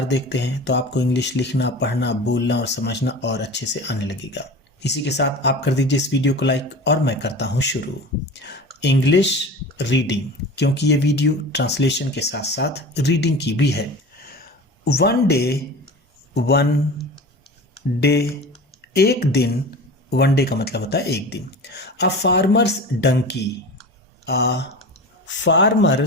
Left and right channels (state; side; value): normal; both; correlation 0.34